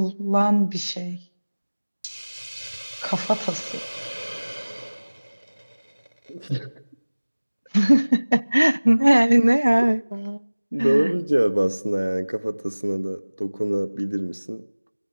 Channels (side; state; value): both; inverted; correlation -1.00